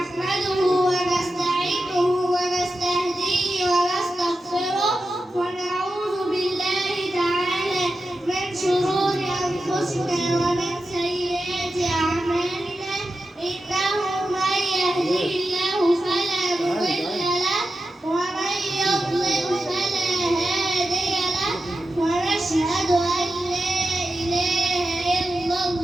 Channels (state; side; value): normal; both; correlation 0.91